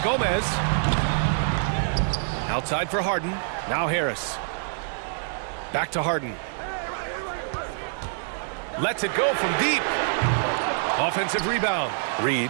Gomez. Outside for Harden. Now Harris. Back to Harden. Lets it go from deep. Offensive rebound.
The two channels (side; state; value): left; silent; digital silence